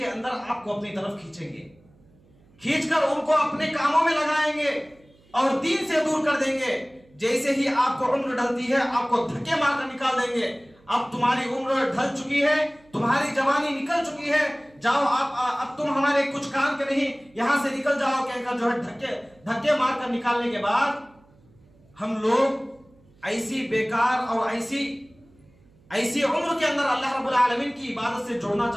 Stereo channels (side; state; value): right; noise; hum, 30 dB below the sound